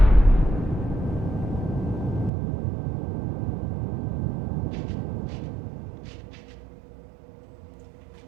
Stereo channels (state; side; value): drops out; left; at 2.3 s